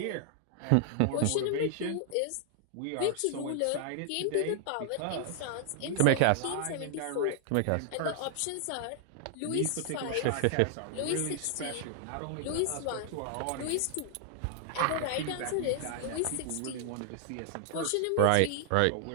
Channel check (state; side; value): different; both; correlation 0.00